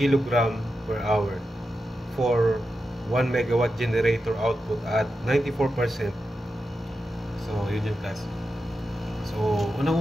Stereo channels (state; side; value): normal; both; correlation 0.89